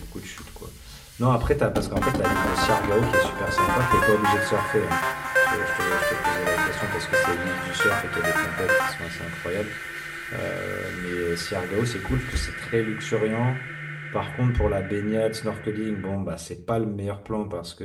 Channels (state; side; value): identical; both; correlation 1.00